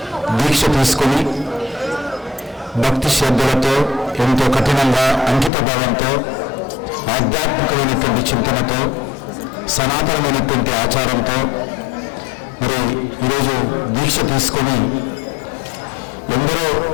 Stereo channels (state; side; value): drops out; right; at 5.5 s